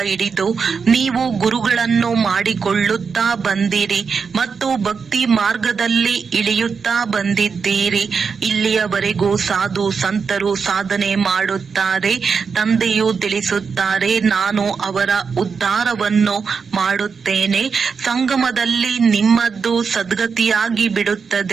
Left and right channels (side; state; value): left; quieter; 5.6 dB